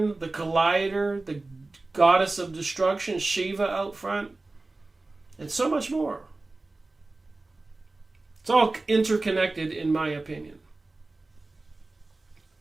the Collider, the goddess of destruction, Shiva, out front, and so much more. It's all interconnected, in my opinion.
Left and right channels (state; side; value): quieter; left; 3.2 dB